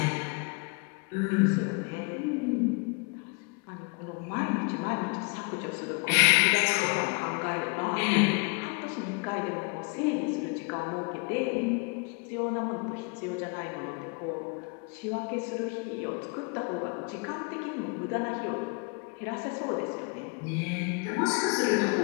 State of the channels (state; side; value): quieter; right; 32.3 dB